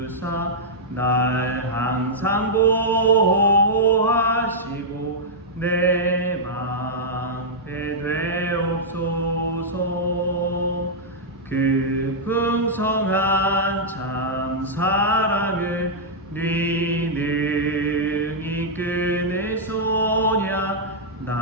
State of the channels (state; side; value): normal; both; correlation -0.09